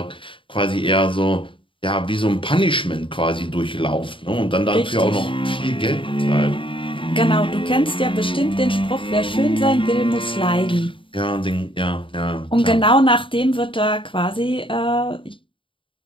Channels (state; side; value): late; right; 0.25 ms